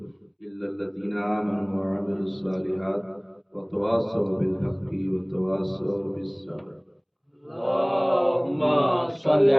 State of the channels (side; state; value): both; identical; correlation 1.00